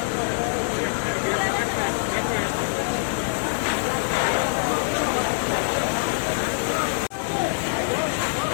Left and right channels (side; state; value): right; silent; digital silence